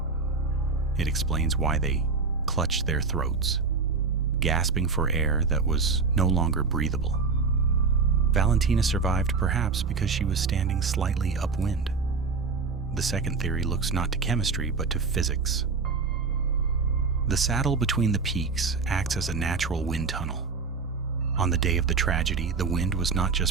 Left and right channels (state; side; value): quieter; left; 4.7 dB